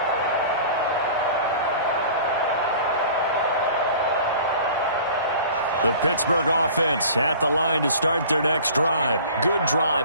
The Pittsburgh offense at the line to start their next drive. Good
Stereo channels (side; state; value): both; inverted; correlation -0.44